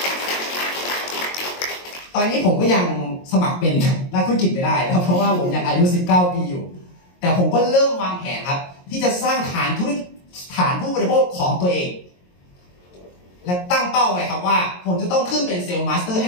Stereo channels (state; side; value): late; right; 22 ms